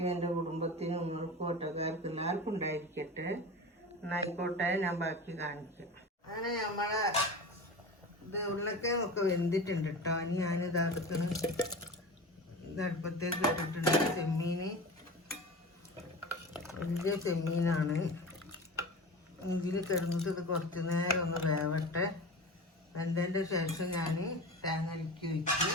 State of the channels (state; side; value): normal; both; correlation 0.31